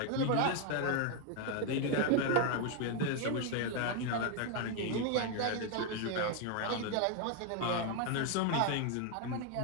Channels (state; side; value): different; both; correlation 0.01